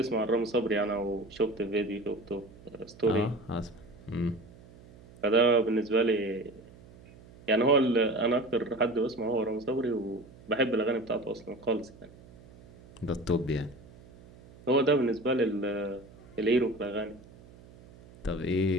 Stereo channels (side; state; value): right; noise; hum, 22 dB below the sound